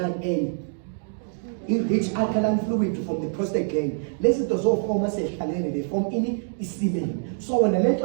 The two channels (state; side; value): silent; left; digital silence